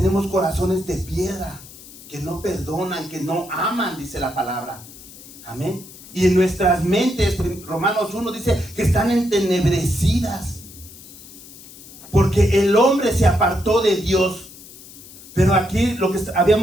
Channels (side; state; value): left; noise; hiss, 18 dB below the sound